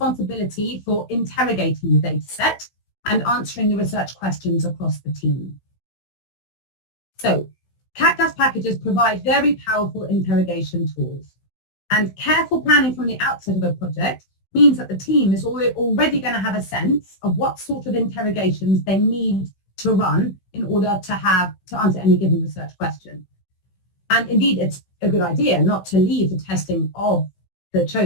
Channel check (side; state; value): right; late; 16 ms